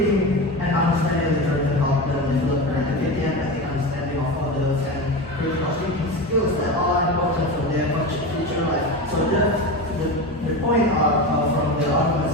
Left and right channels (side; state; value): both; normal; correlation 0.24